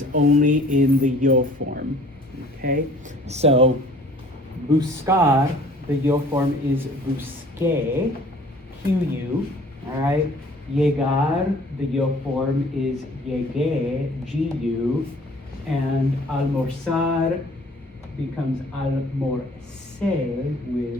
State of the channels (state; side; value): normal; both; correlation 0.52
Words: only in the yo form, okay? So, buscar, the yo form is busqué, QU, all right? Llegar, the yo form is llegué, GU, and almorzar becomes almorcé